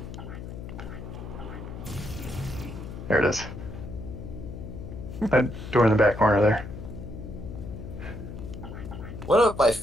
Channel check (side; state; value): left; noise; hum, 10 dB below the sound